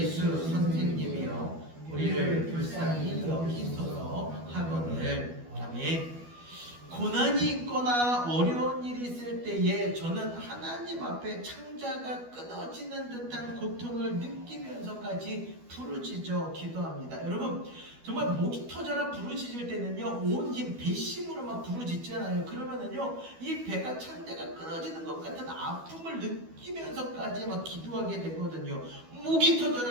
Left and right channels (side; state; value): left; late; 12 ms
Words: 선생님이여 우리를 불쌍히 여기소서 하거늘. 아멘. 고난이 있거나 어려운 일이 있을 때에 때에 저는 하나님 앞에 창자가 끊어지는 듯한 고통을 느끼면서까지 부르짖어 기도합니다. 여러분, 정말 목이 터져라 부르짖을 때는요, 온 힘 배심으로 막 부르짖잖아요. 그러면은요, 이 배가 창자가 끊어지는 것 같은 아픔을 느끼면서까지 막 기도하게 되거든요. 목이